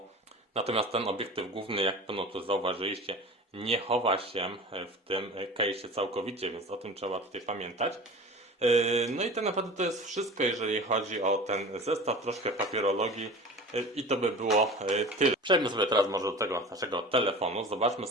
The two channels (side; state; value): both; normal; correlation 0.37